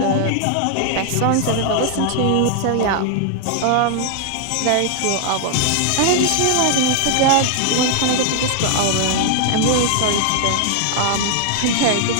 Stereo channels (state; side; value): different; both; correlation 0.00